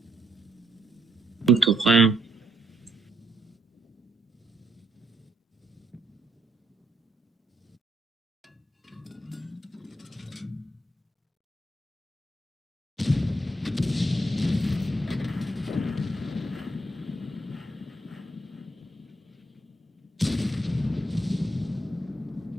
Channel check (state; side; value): normal; both; correlation 0.76